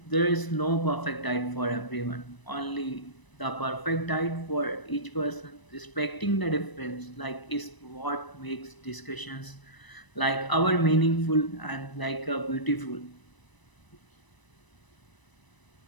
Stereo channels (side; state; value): right; late; 1.0 ms